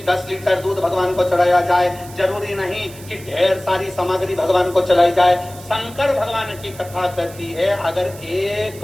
10 लीटर दूध भगवान को चढ़ाया जाए, जरूरी नहीं कि ढेर सारी सामग्री भगवान को चढ़ाई जाए। शंकर भगवान की कथा कहती है, अगर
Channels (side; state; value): right; noise; hiss, 19 dB below the sound